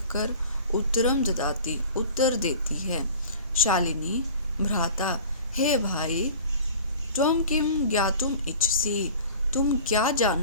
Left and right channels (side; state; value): both; inverted; correlation -0.41